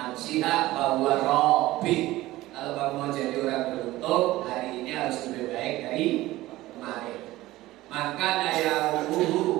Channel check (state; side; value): quieter; left; 17.3 dB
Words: bahwa Robbi. Kalau kamu mau jadi orang beruntung, hari ini harus lebih baik dari kemarin. Maka yaumuhu